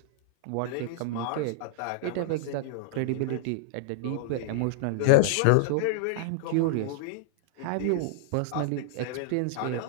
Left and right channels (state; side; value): different; both; correlation -0.01